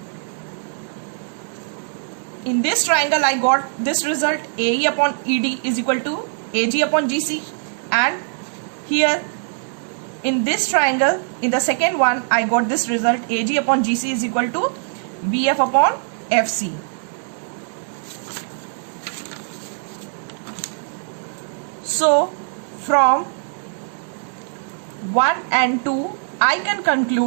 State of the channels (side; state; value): left; silent; digital silence